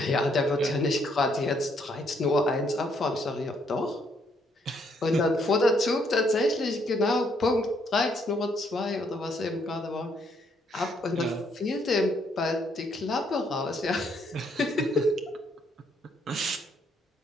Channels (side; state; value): both; normal; correlation 0.71